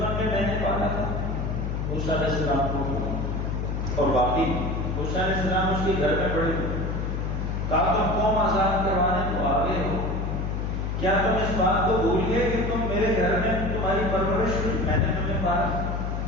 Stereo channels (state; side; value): noise; left; hum, 2 dB below the sound